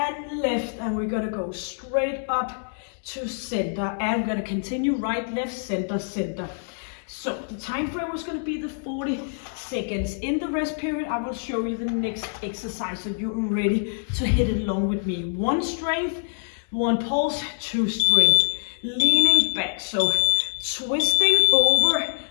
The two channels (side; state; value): right; silent; 62 dB below the other